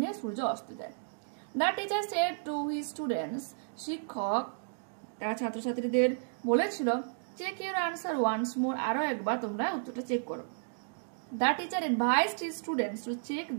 সূর্য অস্ত যায়। The teacher said to his students, শিক্ষক তার ছাত্রছাত্রীদের বলেছিল check your answer once more, আরো একবার তোমরা উত্তরটা চেক করো। The teacher advised his students to check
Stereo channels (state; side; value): silent; left; digital silence